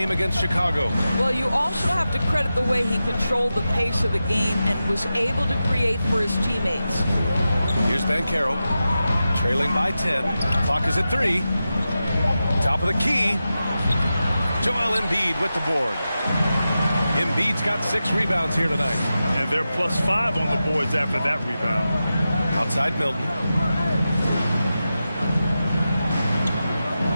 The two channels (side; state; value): both; inverted; correlation -0.92